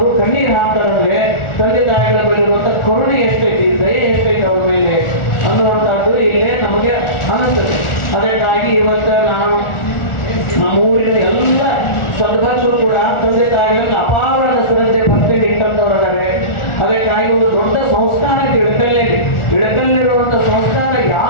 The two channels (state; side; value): late; right; 1.4 ms